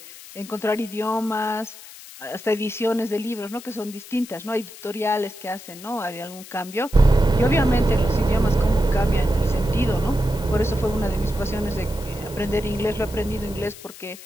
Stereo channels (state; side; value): noise; left; hiss, 17 dB below the sound